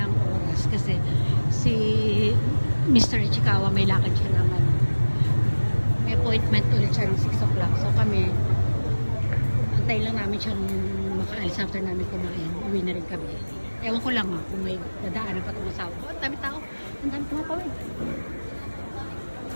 oras kasi si Mr. Ichikawa may lakad siya naman. May appointment ulit siya ng 6 o'clock. So kami, antay lang namin siyang makaalis after namin kumain. Uwi na rin kami. Ewan ko lang kung may dadaanan pa itong asawa. Oh, ang dami tao. Ang dami tumapawid.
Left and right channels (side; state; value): both; inverted; correlation -1.00